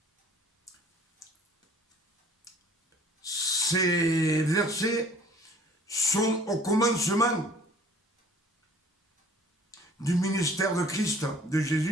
Ces versets sont au commencement du ministère de Christ, de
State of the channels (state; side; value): normal; both; correlation 0.52